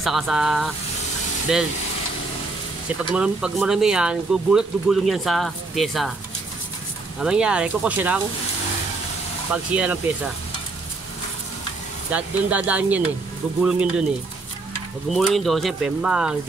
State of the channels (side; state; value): left; quieter; 3.5 dB